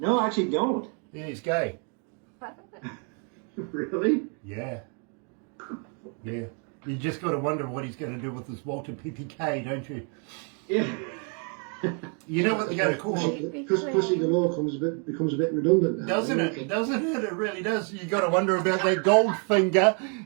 No, I actually don't. Yeah, he's gay. Really? Yeah. You just got to wonder what he's going to do with this Walter PPK, don't you? Yeah. You know what they're going to call him? Because Pussy Galore becomes a bit redundant now. Doesn't it? Doesn't it? It really does. You got to wonder about that Goldfinger.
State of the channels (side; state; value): left; quieter; 38.9 dB